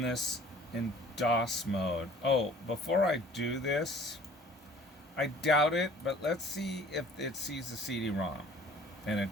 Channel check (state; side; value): normal; both; correlation 0.51